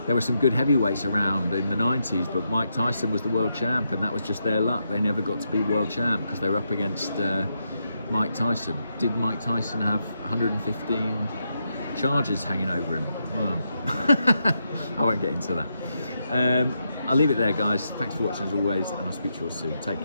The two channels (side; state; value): both; inverted; correlation -0.82